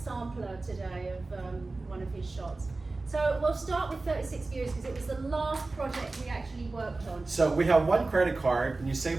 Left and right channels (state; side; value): quieter; left; 3.4 dB